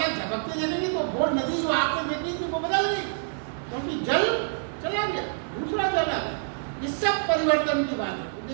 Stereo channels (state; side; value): silent; left; digital silence